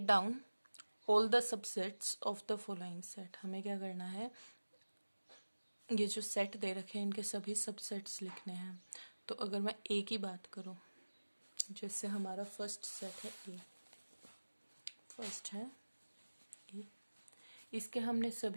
all the subsets of the following set. हमें क्या करना है, ये जो सेट दे रखे हैं इनके सभी सबसेट्स लिखने हैं। तो अगर मैं ए की बात करूं, जैसे हमारा फर्स्ट सेट है ए, फर्स्ट है ए, इसके हमने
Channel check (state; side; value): inverted; both; correlation -1.00